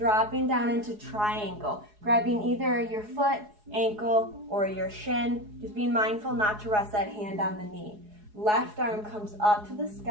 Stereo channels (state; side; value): late; left; 4.8 ms